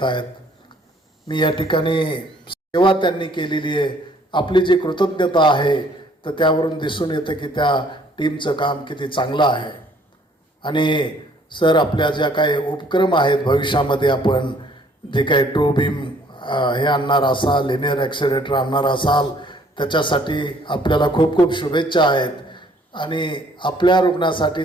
आहेत. मी या ठिकाणी सेवा त्यांनी केलेली आहे, आपली जी कृतज्ञता आहे तर त्यावरून दिसून येतं की त्या टीमचं काम किती चांगलं आहे. आणि सर आपल्या ज्या काही उपक्रम आहेत, भविष्यामध्ये आपण जे काही ट्रू बीम हे आणणार असाल, लिनियर ॲक्सिलेटर आणणार असाल, त्याच्यासाठी आपल्याला खूप खूप शुभेच्छा आहेत. आणि आपल्या रुग्णासाठी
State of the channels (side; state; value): both; normal; correlation 0.61